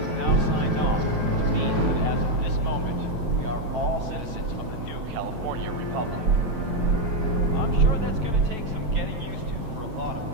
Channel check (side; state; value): left; late; 9.0 ms